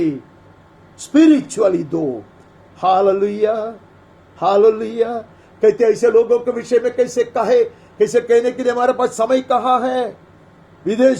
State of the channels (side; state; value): both; identical; correlation 1.00